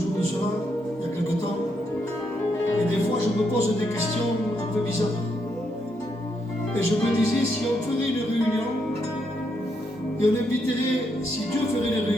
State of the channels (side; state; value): both; normal; correlation 0.78